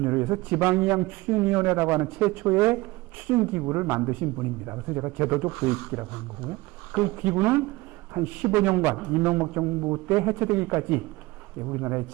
위해서 지방이양 추진위원회라고 하는 최초의 추진기구를 만드신 분입니다. 그래서 제가 제도적 도입기라고 하는 거고요. 그 기구는 한 15년간 이명박 정부 때 해체되기까지 우리나라의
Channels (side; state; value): left; quieter; 21.0 dB